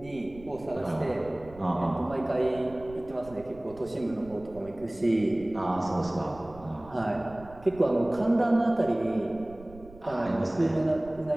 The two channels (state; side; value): noise; right; rumble, 20 dB below the sound